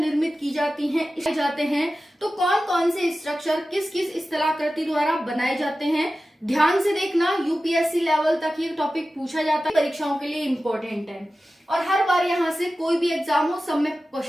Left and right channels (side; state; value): both; normal; correlation 0.94